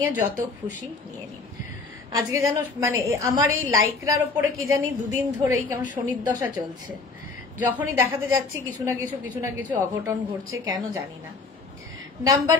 এ যত খুশি নিয়ে নিন। আজকে যেন মানে আমার এই লাইকরার ওপরে কি জানি 2 দিন ধরেই কেমন শনির দশা চলছে। যখনই দেখাতে যাচ্ছি কিছু না কিছু অঘটন ঘটছে, কেন জানি না। নাম্বার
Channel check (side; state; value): right; quieter; 4.0 dB